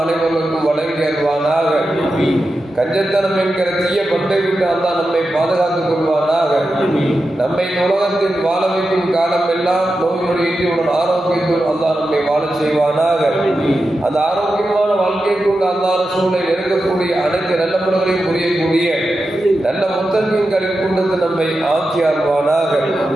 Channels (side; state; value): both; normal; correlation 0.90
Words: அனைவருக்கும் வழங்கி அருள்வானாக. கஞ்சத்தனம் என்கிற தீய பட்டை விட்டு அல்லாஹ் நம்மை பாதுகாத்துக் கொள்வானாக. நம்மை உலகத்தில் வாழ வைக்கும் காலம் எல்லாம் நோய் நொடியுடன் ஆரோக்கியத்தோடு அல்லாஹ் நம்மை வாழ செய்வானாக. அந்த ஆரோக்கியமான வாழ்க்கை கொண்டு அல்லாஹ் ரசூலை நெருங்கக்கூடிய அனைத்து நல்ல முறைகளையும் புரியக்கூடிய நல்ல முத்தகங்களின் கொண்டு நம்மை ஆக்கி அருள்வானாக.